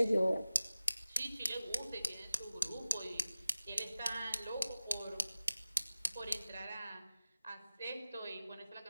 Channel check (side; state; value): both; inverted; correlation -0.97